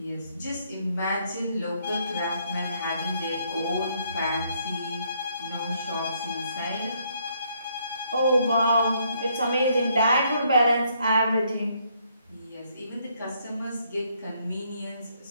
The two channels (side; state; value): both; inverted; correlation -0.70